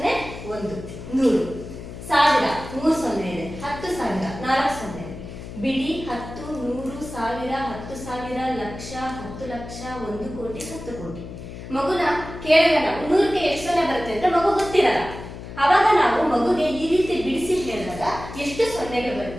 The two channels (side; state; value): left; noise; hum, 12 dB below the sound